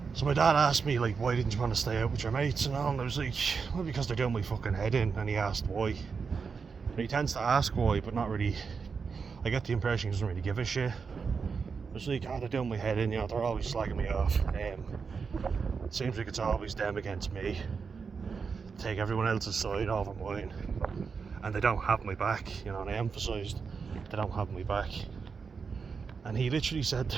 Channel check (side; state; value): left; quieter; 5.5 dB